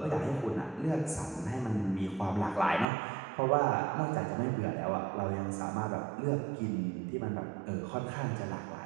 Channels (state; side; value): drops out; left; at 2.9 s